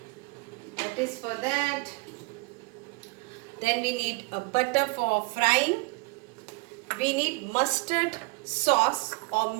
that is for that. Then we need a butter for frying. We need mustard sauce or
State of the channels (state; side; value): quieter; left; 27.2 dB